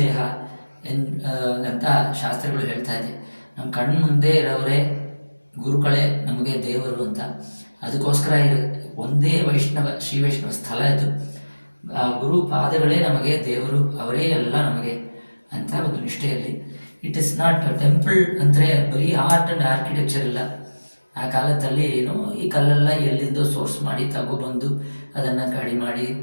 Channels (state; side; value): inverted; both; correlation -1.00